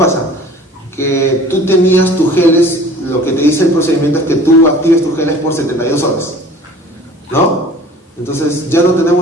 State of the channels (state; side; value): normal; both; correlation 0.47